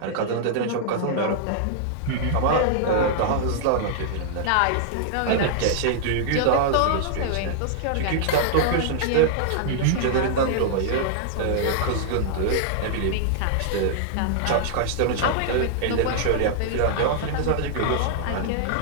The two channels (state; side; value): different; both; correlation -0.01